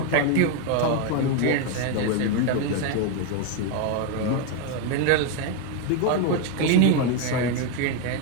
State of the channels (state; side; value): different; both; correlation 0.01